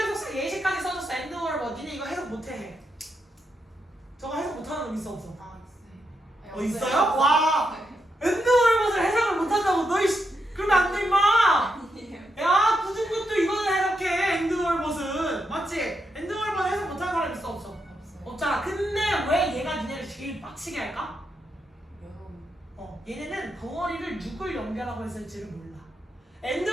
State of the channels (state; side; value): normal; both; correlation 0.83